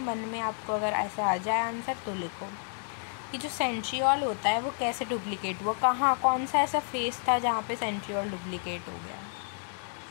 मन में आपको अगर ऐसा आ जाए आंसर तो लिखो कि जो सेंट्रियोल होता है वो कैसे डुप्लीकेट हुआ, कहाँ, कौन सा ऐसा फेस था जहाँ पे सेंट्रियोल डुप्लीकेट हो गया।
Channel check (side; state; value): right; silent; 58 dB below the other